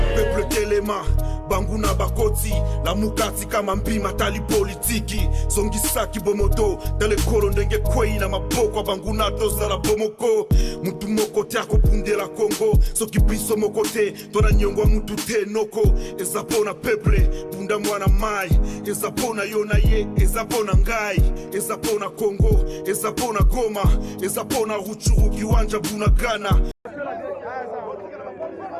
peuple Telema, Banguna Bakoti, la Mukati kama mpima tali politiki, Songisaki Bomoto, Dale Kolo ndenge kwei na maboko Banguna toza la Bomoko, Mutu moko tiako punde la Congo, Soki biso mokote, Tona nyongwa mutu te noko, Ezapona peuple, Punda mwana mai, Ezapona yona ye, Ezapona ngai, Ezapona Congo, Ezapona Goma, Ezapona Ruchuru kiwanja Bunagana.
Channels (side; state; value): both; identical; correlation 1.00